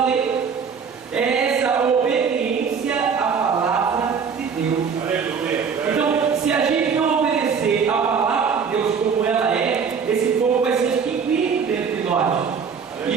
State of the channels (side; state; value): left; quieter; 6.2 dB